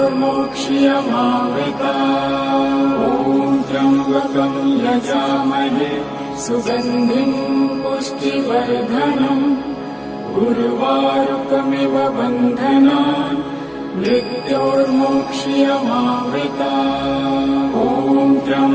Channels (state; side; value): identical; both; correlation 1.00